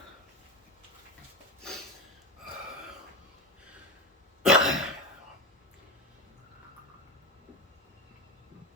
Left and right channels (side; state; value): both; normal; correlation 0.20